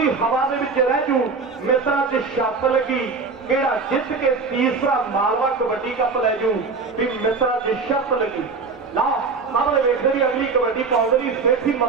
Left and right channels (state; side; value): quieter; left; 4.5 dB